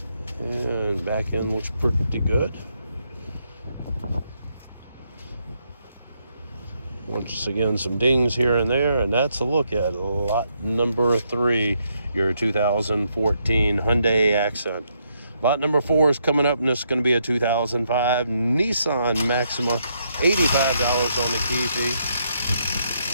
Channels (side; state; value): both; inverted; correlation -0.77